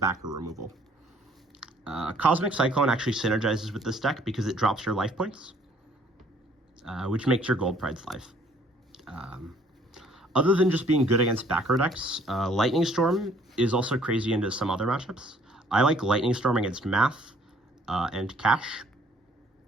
removal. Cosmic Cyclone actually synergizes with this deck because it drops your life points, which makes your Gold Pride's life. Other than just being good against backer decks, Lightning Storm is also crazy into some other matchups. I like Lightning Storm against Math and Cash.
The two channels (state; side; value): normal; both; correlation 0.60